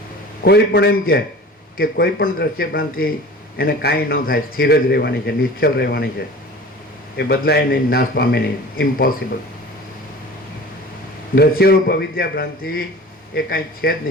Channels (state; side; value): normal; both; correlation 0.40